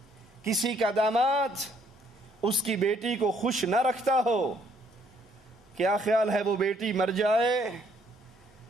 کسی کا داماد اس کی بیٹی کو خوش نہ رکھتا ہو، کیا خیال ہے وہ بیٹی مر جائے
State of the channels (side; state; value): both; normal; correlation 0.66